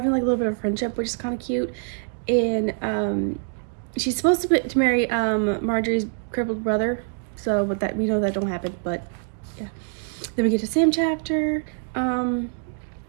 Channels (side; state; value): left; silent; 62 dB below the other